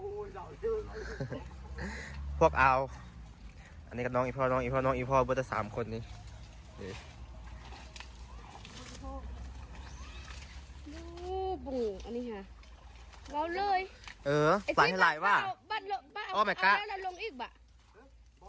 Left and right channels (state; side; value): identical; both; correlation 1.00